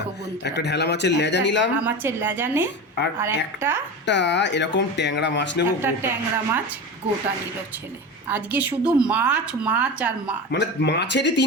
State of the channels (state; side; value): normal; both; correlation 0.26